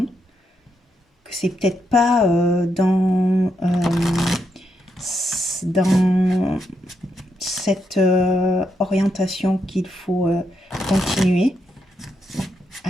que c'est peut-être pas dans cette orientation qu'il faut continuer.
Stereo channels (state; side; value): normal; both; correlation 0.80